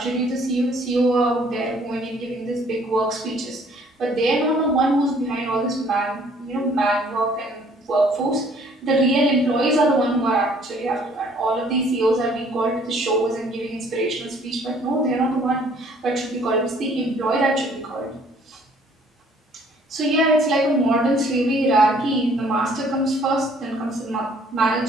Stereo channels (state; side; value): normal; both; correlation 0.59